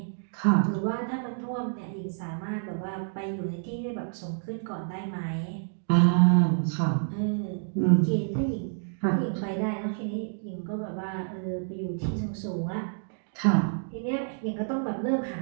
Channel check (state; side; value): silent; left; digital silence